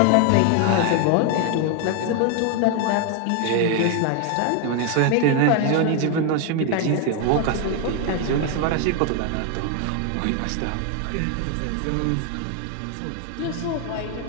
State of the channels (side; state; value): both; different; correlation 0.00